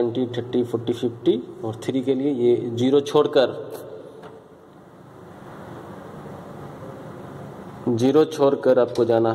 30, 40, 50 और 3 के लिए ये 0 छोड़कर आपको जाना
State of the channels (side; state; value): both; identical; correlation 1.00